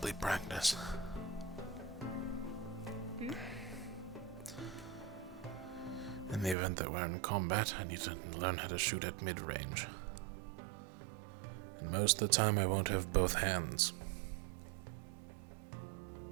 practice. In the event that we're in combat, I need to learn how to shoot at mid-range. And most of the time I won't have both hands.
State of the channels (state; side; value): drops out; left; at 6.6 s